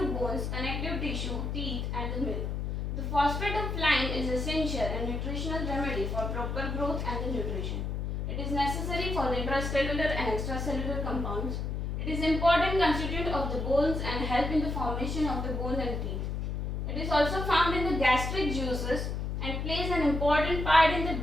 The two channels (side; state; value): left; noise; hum, 2 dB below the sound